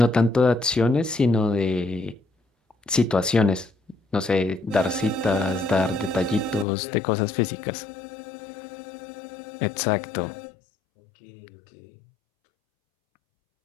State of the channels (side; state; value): right; drops out; at 6.7 s